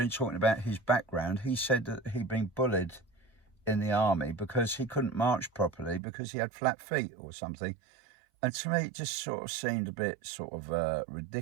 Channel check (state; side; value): drops out; left; at 6.0 s